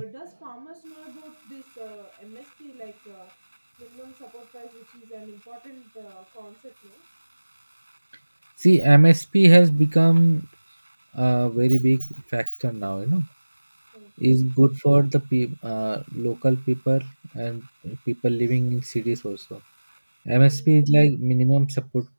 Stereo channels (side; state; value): both; inverted; correlation -1.00